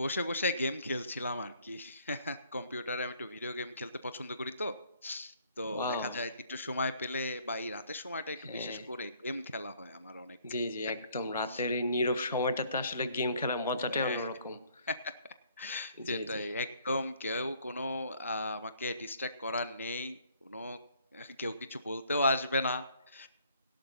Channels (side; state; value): both; inverted; correlation -0.62